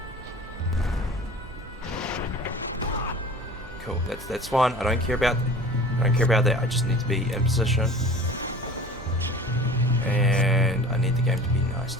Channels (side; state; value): both; normal; correlation 0.42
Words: Cool, that's fine. I don't care about that. I just need to be in position, and I need the game to be nice